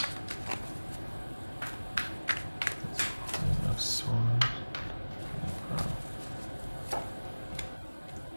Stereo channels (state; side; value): inverted; both; correlation -1.00